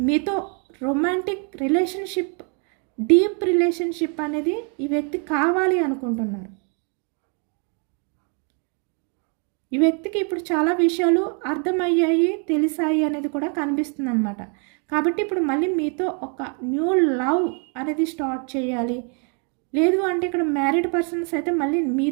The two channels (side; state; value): left; quieter; 38.9 dB